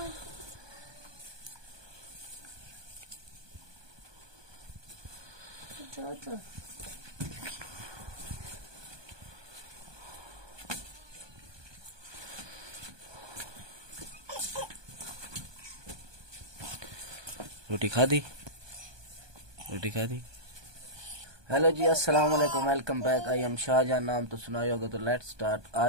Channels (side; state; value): left; late; 1.2 ms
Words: रोटी खा दी? रोटी खा दी? हेलो जी, अस्सलाम वालेकुम, welcome back. I am Shahjahan. नाम तो सुना ही होगा, तो लेट्स स्टार्ट।